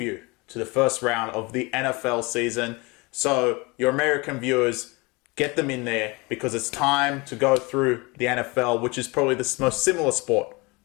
to the first round of the NFL season. So your American viewers, get them in there, because it's time to go through the NFL, which is probably the most similar sport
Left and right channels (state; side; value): quieter; right; 26.0 dB